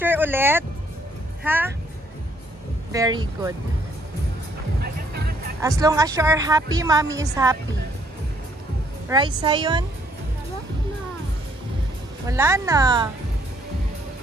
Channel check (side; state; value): both; normal; correlation 0.67